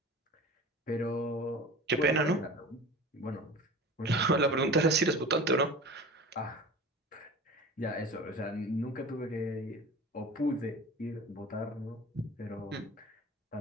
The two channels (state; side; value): normal; both; correlation 0.37